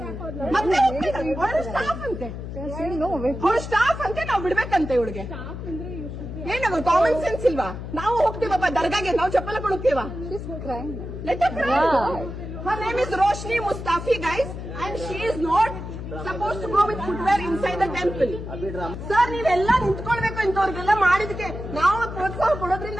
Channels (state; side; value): noise; left; hum, 8 dB below the sound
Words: ಮತ್ತೆ ಅವಳು ಸ್ಟಾಫ್ ಅಂತೆ, ಅವಳು ಸ್ಟಾಫ್ ಅಂತೆ, ನಾವು ಬಿಡ್ಬೇಕಂತೆ ಇವಳಿಗೆ. ಏನವ ಕಾಮನ್ ಸೆನ್ಸ್ ಇಲ್ವಾ? ನಾವು ಹೋಗ್ತೀವಪ್ಪ ದರ್ಗಾಗೆ, ನಾವು ಚಪ್ಪಲ ಕೊಡುತ್ತೀವ. Her name is Roshni Mustafi, guys, and she is not supposed to go with footwear inside the temple. Sir, ನೀವೆಲ್ಲ ನಿಂತ್ಕೊಳ್ಬೇಕು. ಇಂಥವ್ರಿಗೆಲ್ಲ ಮಾಡಿದಕ್ಕೆ ನಾವು ಪ್ರೋತ್ಸಾಹ